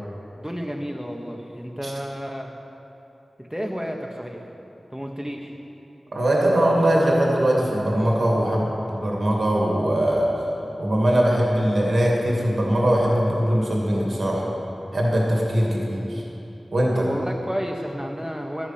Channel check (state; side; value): normal; both; correlation 0.96